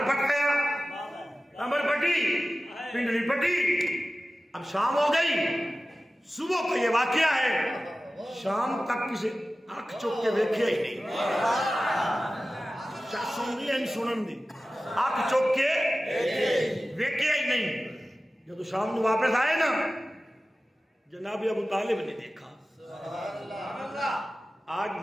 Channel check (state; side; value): normal; both; correlation 0.95